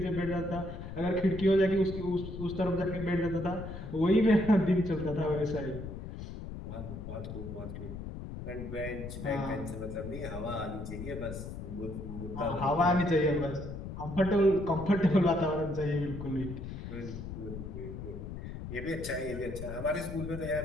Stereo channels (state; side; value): noise; left; rumble, 8 dB below the sound